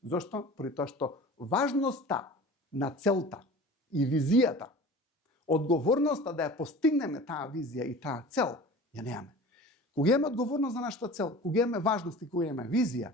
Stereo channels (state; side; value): normal; both; correlation 0.39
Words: Зошто? Поради тоа што важноста на целта и визијата, одговорноста да ја постигнеме таа визија и таа цел, ја немаме. Кога имаме одговорност за нашата цел, кога имаме важност и кога имаме визија,